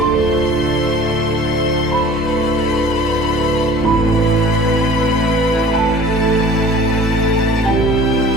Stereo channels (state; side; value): normal; both; correlation 0.46